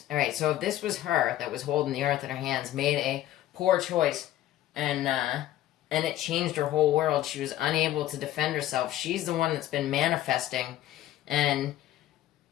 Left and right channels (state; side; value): quieter; right; 13.5 dB